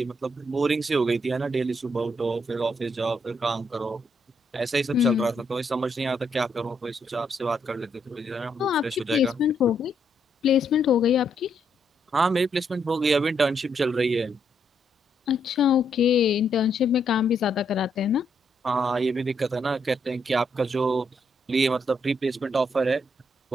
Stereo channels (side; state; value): both; normal; correlation 0.76